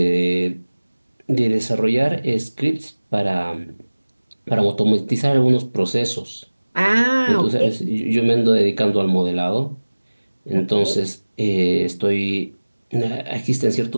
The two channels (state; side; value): inverted; both; correlation -1.00